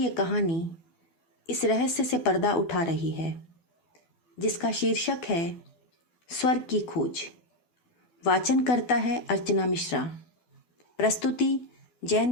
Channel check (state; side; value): late; right; 12 ms